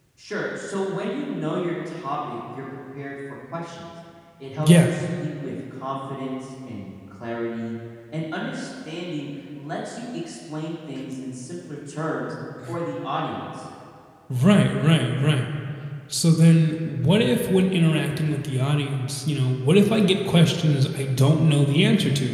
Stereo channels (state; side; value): identical; both; correlation 1.00